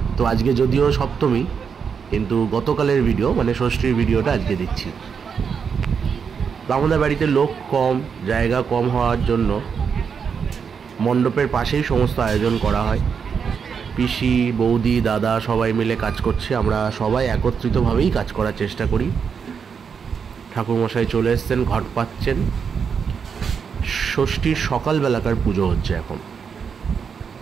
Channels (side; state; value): left; quieter; 6.5 dB